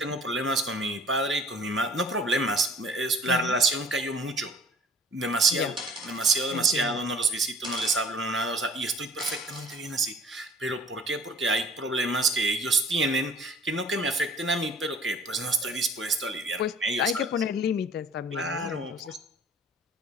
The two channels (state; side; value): normal; both; correlation 0.49